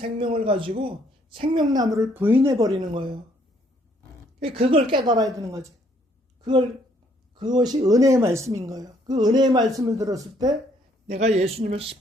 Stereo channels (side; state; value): both; normal; correlation 0.67